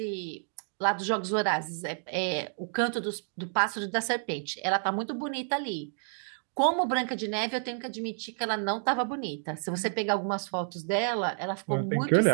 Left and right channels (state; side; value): silent; left; digital silence